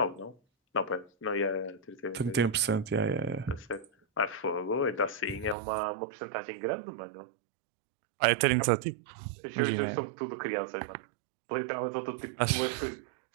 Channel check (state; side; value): drops out; left; at 5.6 s